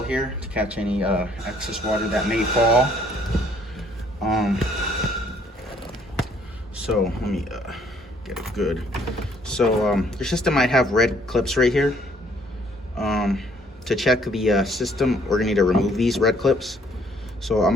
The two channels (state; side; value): normal; both; correlation 0.63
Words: here to catch any excess water that may fall. So let me get it good. So your system might have red clips right here. To check the system, we're gonna need to remove these red clips. So I'm